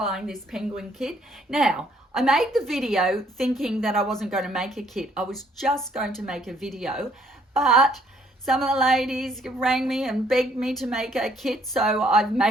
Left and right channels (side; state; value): both; normal; correlation 0.65